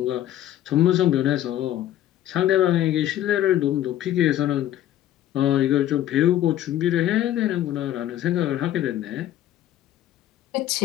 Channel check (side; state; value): right; quieter; 12.5 dB